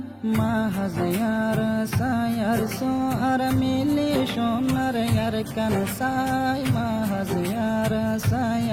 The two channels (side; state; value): both; identical; correlation 1.00